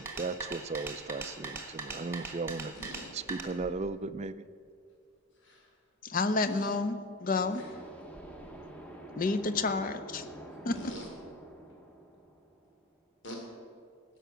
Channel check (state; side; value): normal; both; correlation 0.27